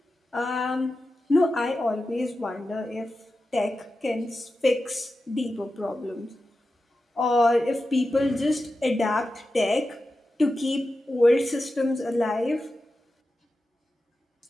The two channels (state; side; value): normal; both; correlation 0.92